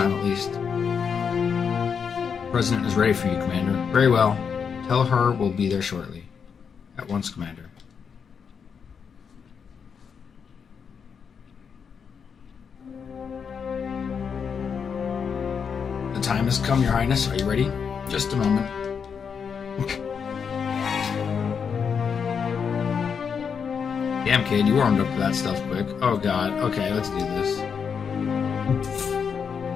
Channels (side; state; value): right; quieter; 6.6 dB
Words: at least. The President is ready for you, Commander. Very well. Tell her we'll be there shortly. At once, Commander. The time has come, Your Highness. Are you ready? Just a moment. Damn, kid, you warmed up to that stuff quick. Oh, God. Okay, let's do this.